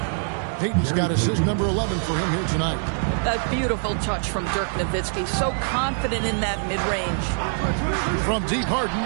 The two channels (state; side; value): silent; left; digital silence